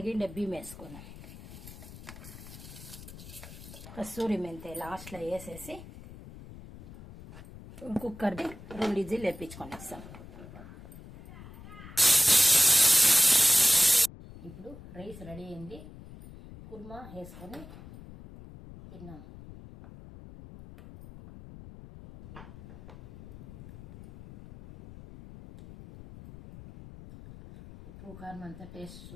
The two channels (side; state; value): left; noise; rumble, 16 dB below the sound